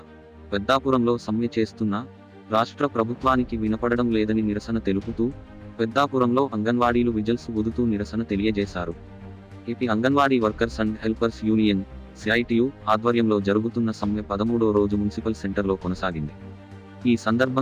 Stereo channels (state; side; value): identical; both; correlation 1.00